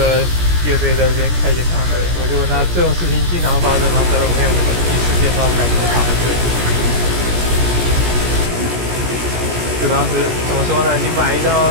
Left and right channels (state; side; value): late; left; 17 ms